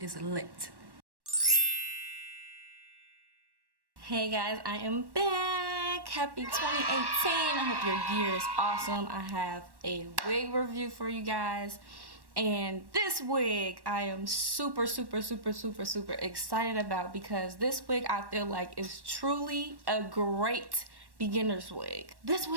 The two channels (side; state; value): left; late; 1.1 ms